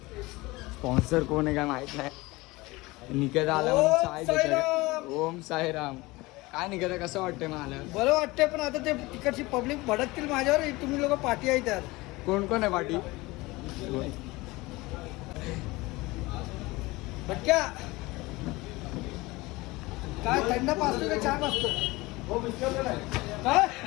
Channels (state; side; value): quieter; right; 21.6 dB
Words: स्पॉन्सर कोण आहे काय माहित नाही. निकेत आला म्हणून चाय देतात. ओम साईराम. काय निकेत, कसं वाटतंय मला? बरं वाटतंय, पण आता ते तिकडची पब्लिक भडकतील माझ्यावर. तुम्ही लोक पाठी आहे त्यात. कोण कोण आहे पाठी? भटक्या काय थंड पाचतो का चहा पाचतो? काय